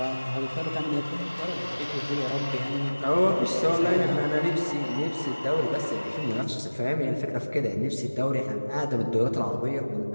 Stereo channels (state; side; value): inverted; both; correlation -1.00